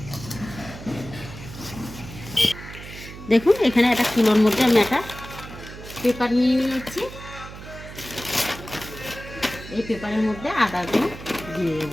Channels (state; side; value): noise; right; hum, 13 dB below the sound